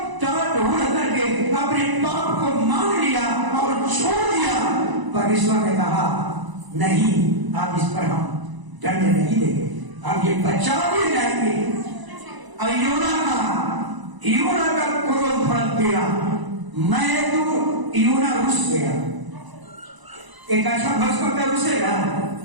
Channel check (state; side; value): late; left; 1.0 ms